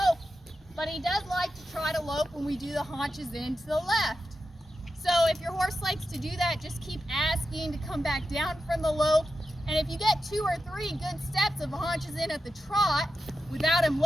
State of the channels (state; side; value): normal; both; correlation 0.90